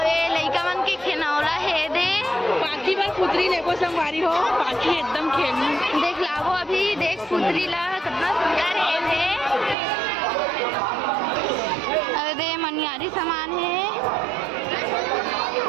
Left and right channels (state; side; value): drops out; left; at 9.8 s